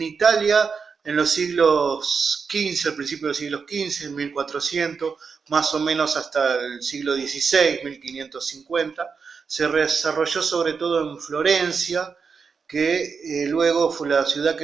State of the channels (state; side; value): quieter; left; 5.5 dB